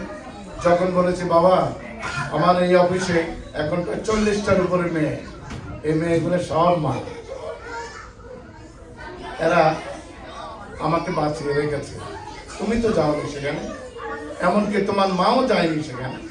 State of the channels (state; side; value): identical; both; correlation 1.00